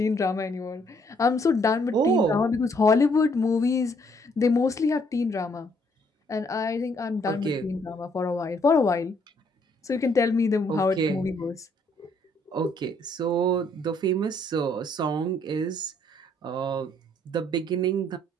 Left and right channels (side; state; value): both; normal; correlation 0.67